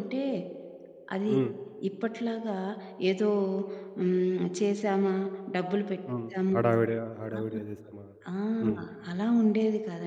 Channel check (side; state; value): both; identical; correlation 1.00